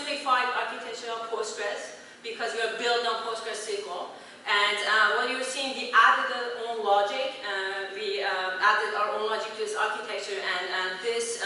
architecture of Postgres because we are built on Postgres SQL. And what you're seeing, we added our own logic. We added our own logic to this architecture, and this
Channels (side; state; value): both; identical; correlation 1.00